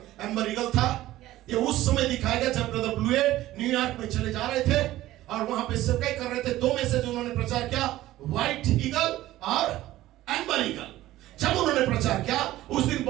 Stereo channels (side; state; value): left; quieter; 15.5 dB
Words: एम्बर ईगल था। ये उस समय दिखाया गया जब ब्रदर ब्लूएट न्यूयॉर्क में चले जा रहे थे और वहां पे सेवकाई कर रहे थे। 2 मैसेज उन्होंने प्रचार किया, व्हाइट ईगल और एम्बर ईगल। जब उन्होंने प्रचार किया, उस दिन